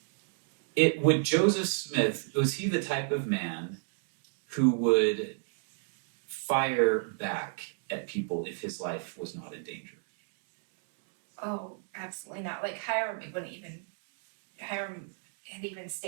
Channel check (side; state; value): left; silent; 56 dB below the other